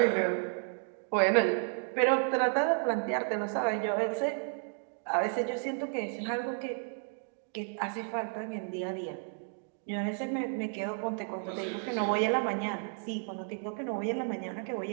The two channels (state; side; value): silent; left; 56 dB below the other